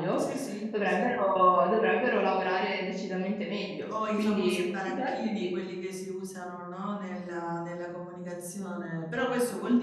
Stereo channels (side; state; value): both; identical; correlation 1.00